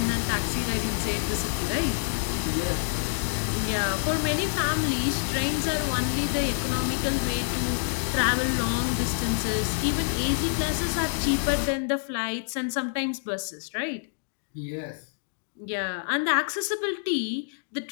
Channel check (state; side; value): silent; right; digital silence